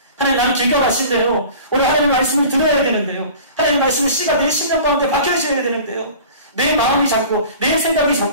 하나님, 나는 길가 마신 대로 우리 하나님의 말씀을 들어야 되는데요. 하나님의 말씀의 씨가 내 심령 가운데 박혀있어야 되는데요. 내 마음이 잡고 내 생각이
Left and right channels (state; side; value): inverted; both; correlation -0.42